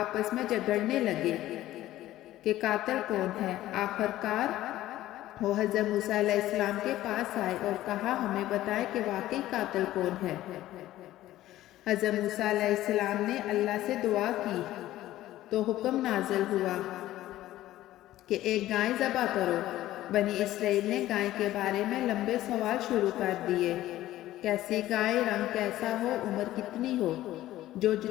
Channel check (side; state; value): right; quieter; 14.8 dB